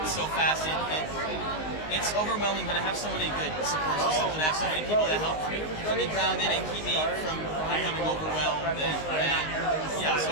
so fast. It's overwhelming, but I have so many good support systems, and I have so many people that help keep me grounded and keep me from becoming overwhelmed. And yeah,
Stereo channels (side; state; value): right; late; 19 ms